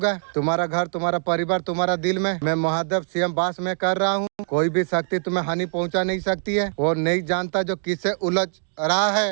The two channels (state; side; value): silent; left; digital silence